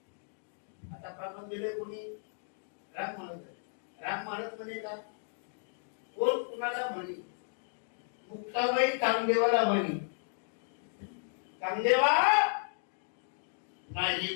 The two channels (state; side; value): silent; right; digital silence